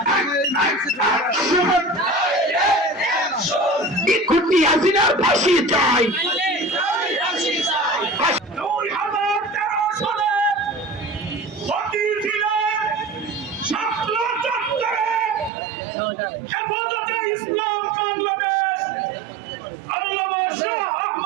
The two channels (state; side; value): drops out; left; at 15.5 s